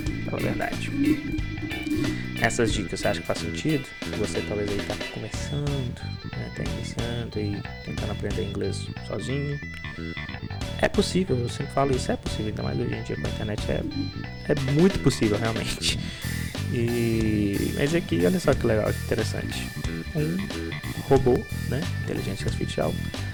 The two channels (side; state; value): both; identical; correlation 1.00